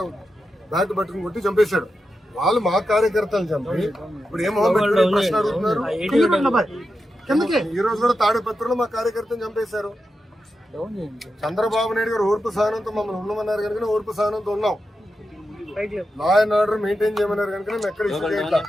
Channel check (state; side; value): normal; both; correlation 0.89